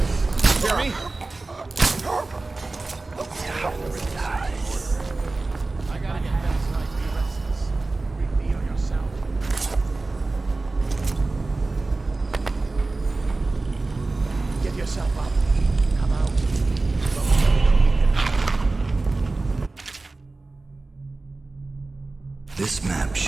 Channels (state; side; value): quieter; left; 3.4 dB